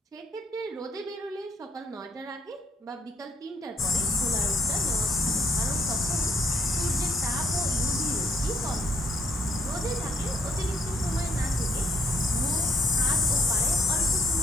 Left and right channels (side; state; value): both; normal; correlation 0.69